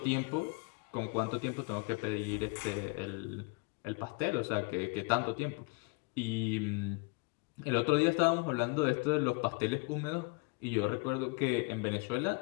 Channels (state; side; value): quieter; right; 31.2 dB